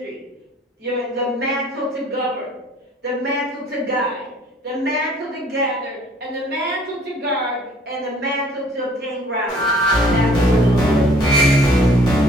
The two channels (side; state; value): both; normal; correlation 0.56